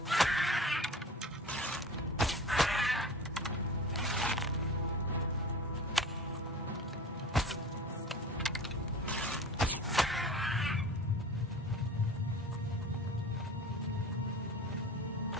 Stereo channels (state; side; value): normal; both; correlation 0.38